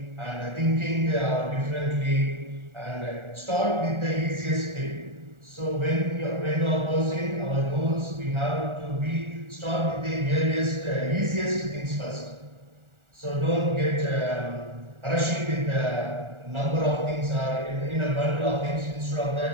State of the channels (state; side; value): late; left; 1.4 ms